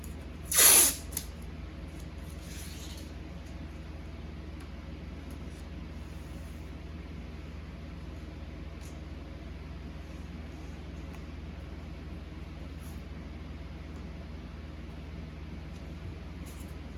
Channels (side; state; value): both; identical; correlation 1.00